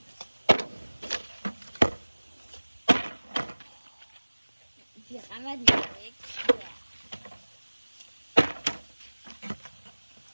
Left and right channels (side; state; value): both; inverted; correlation -1.00